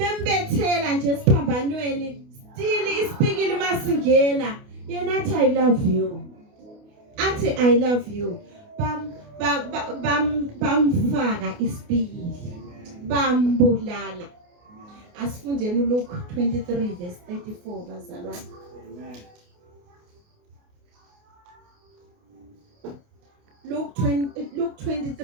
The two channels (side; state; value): left; late; 28 ms